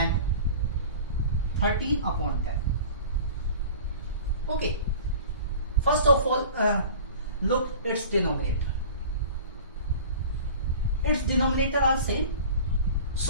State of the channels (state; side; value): inverted; both; correlation -0.40